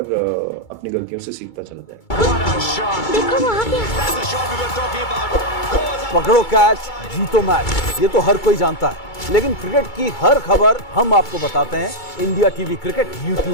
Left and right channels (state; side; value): late; right; 2.3 ms